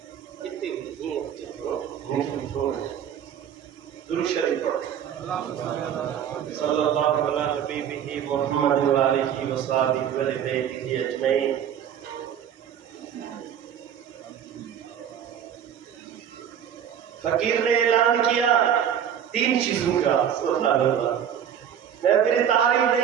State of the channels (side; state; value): left; quieter; 9.1 dB